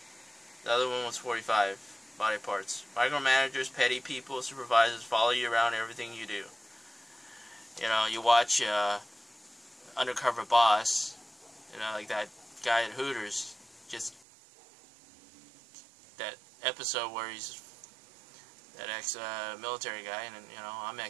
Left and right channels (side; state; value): left; drops out; at 14.2 s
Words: The other one was 45. Body parts. Micromanagers, petty people, supervisors, follow you around everything you do. You know, you watch Undercover Boss, you know, like that guy at Hooters, just that episode where he's that ex-military guy, and you know, I'm